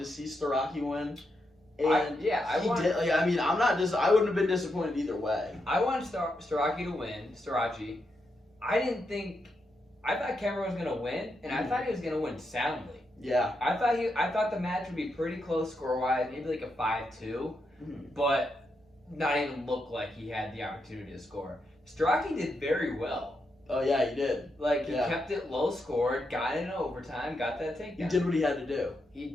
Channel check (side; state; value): both; normal; correlation 0.83